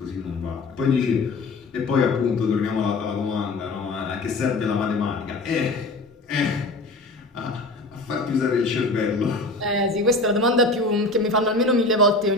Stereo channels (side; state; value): right; quieter; 3.1 dB